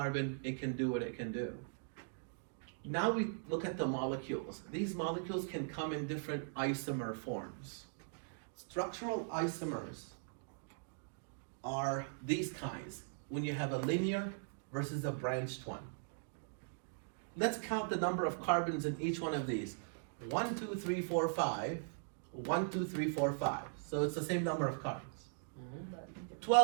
it can do what it can do. Now we look at the molecules. These molecules can come in different isomer forms. Structural isomers are these kinds, when you have a linear versus a branched one. Let's count the number of carbons in each one of these. 1, 2, 3, 4, 5. 1, 2, 3, 4, 5. So it's the same number of carbons.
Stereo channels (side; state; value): left; silent; digital silence